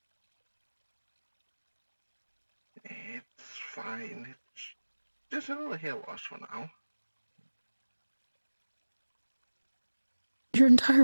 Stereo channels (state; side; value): inverted; both; correlation -1.00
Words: It's fine. It's just a little hair loss for now. Your